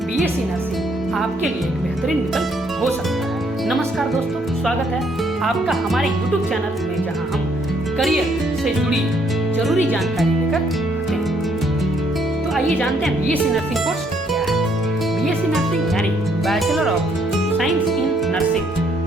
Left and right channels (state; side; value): normal; both; correlation 0.69